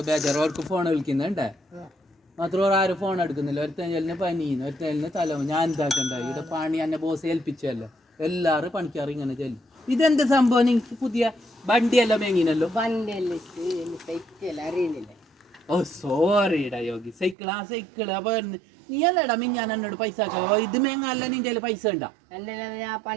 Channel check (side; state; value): left; drops out; at 17.4 s